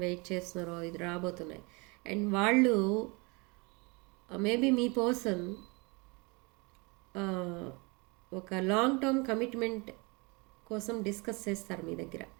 వెయిట్ చేస్తున్నారో ఇది రాబోతున్నాయి. అండ్ వాళ్ళు మేబీ మీ పర్సన్ ఒక లాంగ్ టర్మ్ కమిట్మెంట్ కోసం డిస్కస్ చేస్తారు మీ దగ్గర,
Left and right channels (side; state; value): left; quieter; 28.6 dB